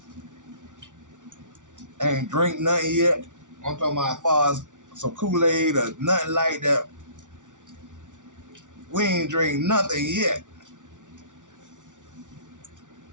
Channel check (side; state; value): left; late; 0.87 ms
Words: Ain't drink nothing yet. I'm talking about as far as some Kool-Aid or nothing like that. We ain't drink nothing yet.